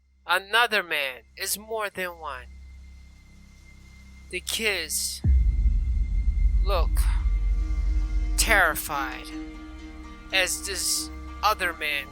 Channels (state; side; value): identical; both; correlation 1.00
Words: Another man. It's more than one. The kids look terrified as this other man